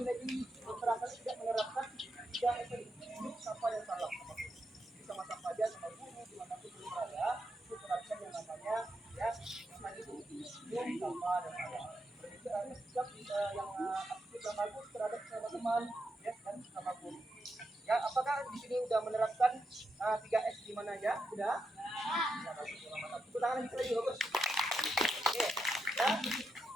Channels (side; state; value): both; normal; correlation 0.84